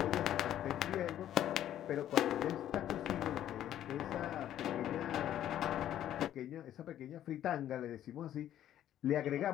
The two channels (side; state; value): right; quieter; 11.6 dB